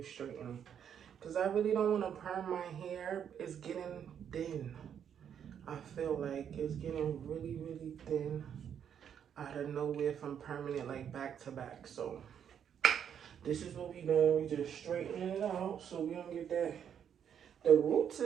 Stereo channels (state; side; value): quieter; left; 8.5 dB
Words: straighten it. Because I really don't want to perm my hair. It's getting thin. I feel like it's getting really, really thin out of nowhere from perming it like back to back. So this is what we doing. We just straighten it out so we don't get that. The roots